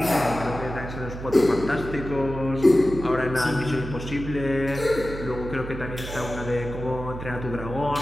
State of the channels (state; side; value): noise; right; hum, 9 dB below the sound